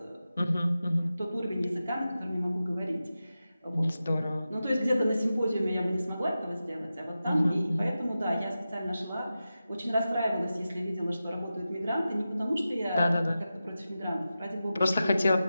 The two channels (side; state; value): both; inverted; correlation -0.93